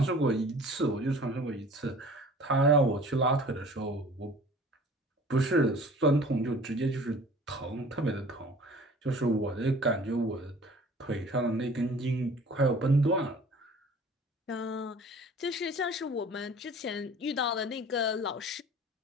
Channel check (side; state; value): both; normal; correlation 0.47